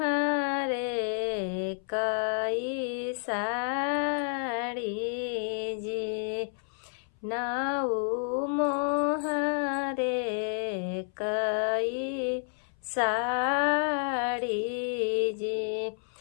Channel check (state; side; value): silent; right; 58 dB below the other